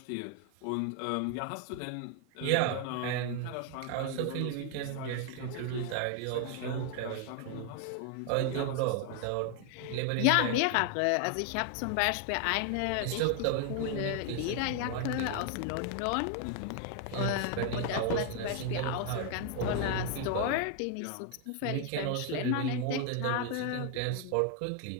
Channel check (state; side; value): different; both; correlation 0.00